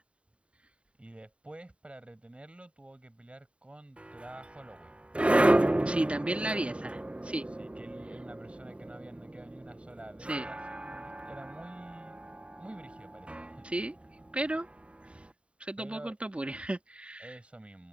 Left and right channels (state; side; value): late; left; 0.060 ms